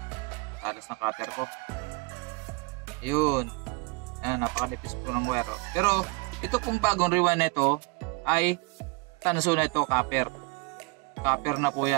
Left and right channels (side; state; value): left; quieter; 28.2 dB